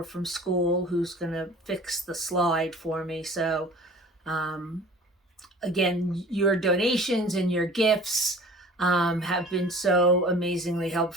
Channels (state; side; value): normal; both; correlation 0.45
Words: from school who's going to fix the slide for me. So again, your donations and your gifts have been so amazingly